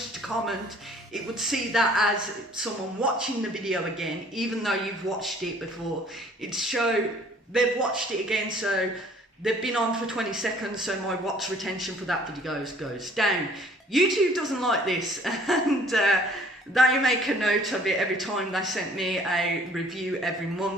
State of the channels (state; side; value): normal; both; correlation 0.56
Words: to comment. It would see that as someone watching the video again, even though you've watched it before. It'd show they've watched it again, so they've been on for 20 seconds, so my watch retention for that video goes down. YouTube doesn't like this, and they make a note of it every time they send me a review every